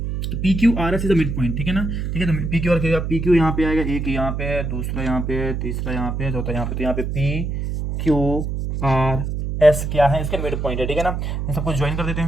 तो P Q are S is a mid point, ठीक है ना, ठीक है, तो पी क्यू आर क्या, पी क्यू यहाँ पे आएगा, एक यहाँ पे है, दूसरा यहाँ पे है, तीसरा यहाँ पे है, चौथा यहाँ पे, तो यहाँ पे पी क्यू आर एस क्या है, इसके मिड पॉइंट है, ठीक है ना। ये सब कुछ ज्वाइन कर देते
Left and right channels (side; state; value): right; noise; hum, 3 dB below the sound